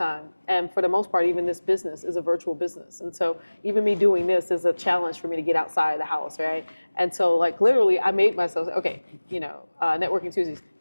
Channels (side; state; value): both; inverted; correlation -1.00